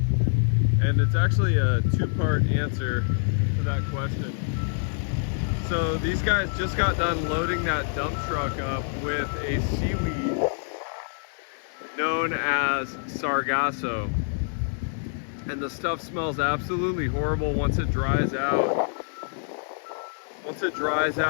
And it's actually a two-part answer to that question. So these guys just got done loading that dump truck up with a seaweed known as sargasso. And the stuff smells absolutely horrible once it dries out. Once it dries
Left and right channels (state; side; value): silent; right; digital silence